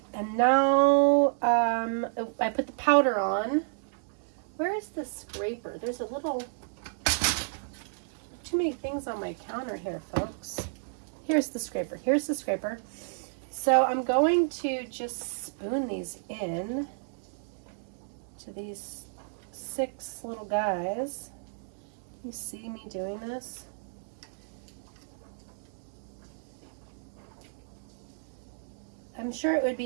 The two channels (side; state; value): left; silent; digital silence